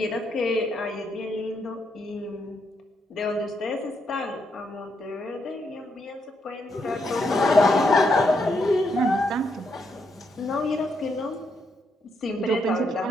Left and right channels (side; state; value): both; normal; correlation 0.78